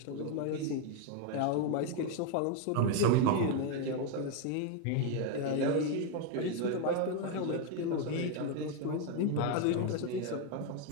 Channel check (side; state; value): both; different; correlation 0.01